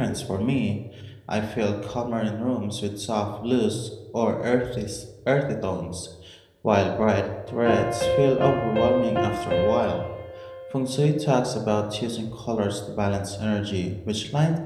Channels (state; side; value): identical; both; correlation 1.00